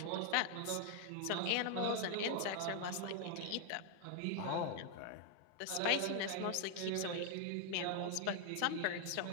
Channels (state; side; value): different; both; correlation 0.00